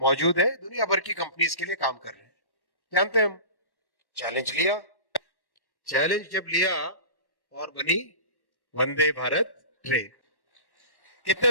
है, दुनिया भर की कंपनीज के लिए काम कर रहे हैं। जानते हैं हम, चैलेंज लिया, चैलेंज जब लिया और बनी वंदे भारत ट्रेन। कितने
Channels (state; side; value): late; right; 1.1 ms